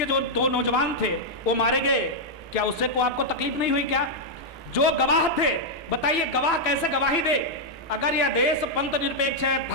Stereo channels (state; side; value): normal; both; correlation -0.04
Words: जो 2 नौजवान थे वो मारे गए, क्या उससे को आपको तकलीफ नहीं हुई क्या? जो गवाह थे, बताइए गवाह कैसे गवाही दे? अगर यह देश पंथ निरपेक्ष है,